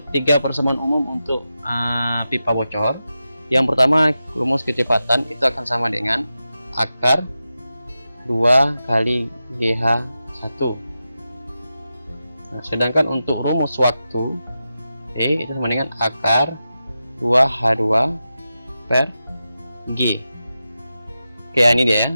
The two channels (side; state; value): both; inverted; correlation -0.91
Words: 3 persamaan umum untuk pipa bocor. Yang pertama, rumus kecepatan itu akan sama dengan akar 2 kali GH1. Nah, sedangkan untuk rumus waktu E itu sama dengan akar 2H2 per G. Oke, ini dia